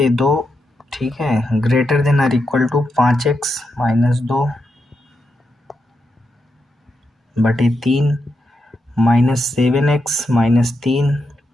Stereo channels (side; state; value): both; normal; correlation 0.85